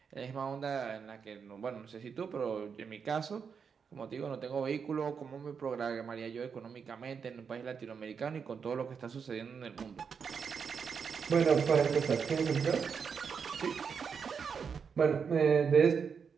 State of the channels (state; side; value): quieter; left; 6.3 dB